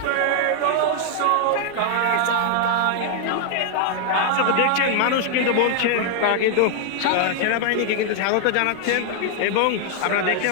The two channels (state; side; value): different; both; correlation 0.00